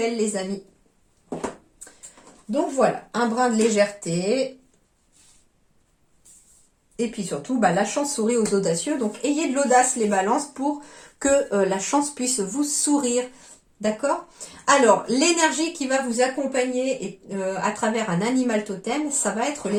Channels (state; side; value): identical; both; correlation 1.00